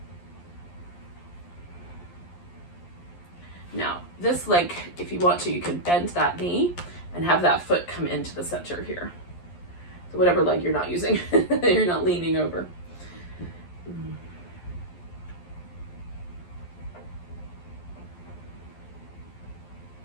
Now, this leg, if you want to, you can bend that knee and have that foot come into the center here. So whatever leg you're not using, you're not leaning over.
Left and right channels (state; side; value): late; right; 11 ms